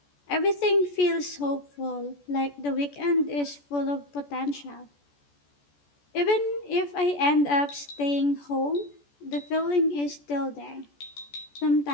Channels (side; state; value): right; late; 14 ms